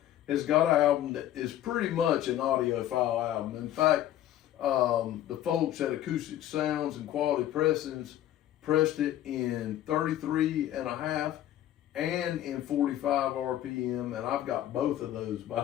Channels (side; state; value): right; quieter; 12.5 dB